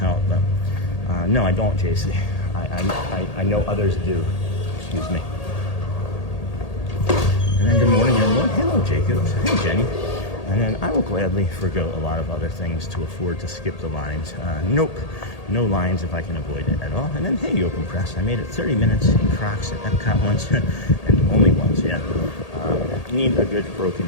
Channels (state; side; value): late; right; 1.8 ms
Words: But no, I don't, JC. I know others do. Excuse me. And then good morning, everyone. Hello, Jacob. Hey, Jenny. And then I will gladly forgo a lot of other things to afford to skip the lines. Nope, no lines if I can avoid it at all. And then, hey, Yoakum Press, I made it 30 minutes in Crocs at EPCOT once, and only once, yeah. You need a good